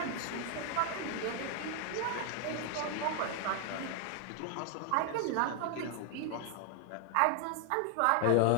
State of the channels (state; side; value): different; both; correlation 0.00